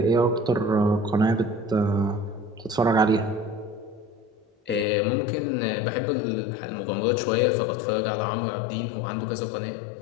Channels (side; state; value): right; drops out; at 4.9 s